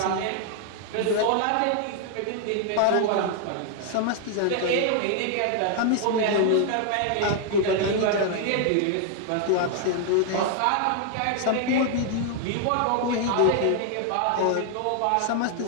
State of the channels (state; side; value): different; both; correlation 0.00